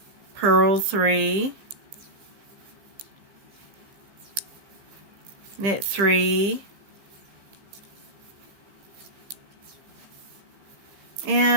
purl 3, knit 3,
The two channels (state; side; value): late; left; 15 ms